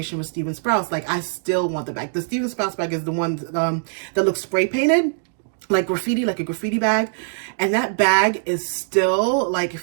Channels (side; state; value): left; silent; digital silence